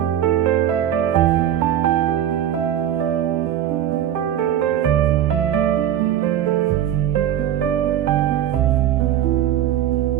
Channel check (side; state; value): left; quieter; 10.9 dB